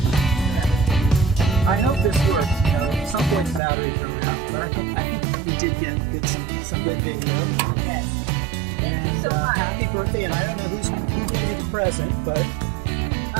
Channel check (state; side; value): drops out; left; at 3.6 s